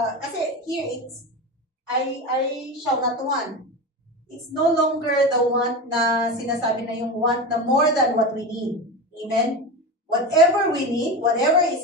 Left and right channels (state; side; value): normal; both; correlation 0.23